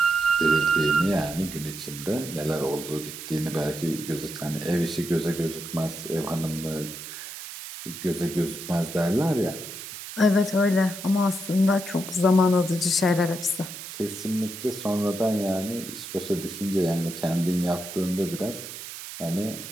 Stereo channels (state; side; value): noise; right; hiss, 10 dB below the sound